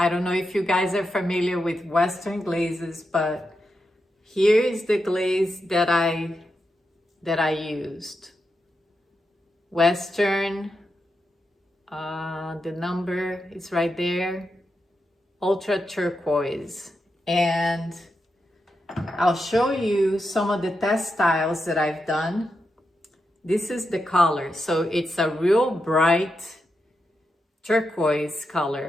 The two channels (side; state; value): both; normal; correlation 0.87